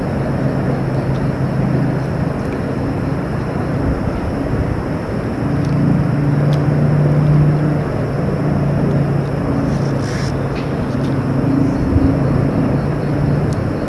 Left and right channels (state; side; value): identical; both; correlation 1.00